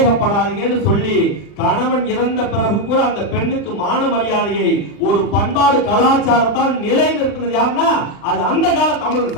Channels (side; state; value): right; late; 40 ms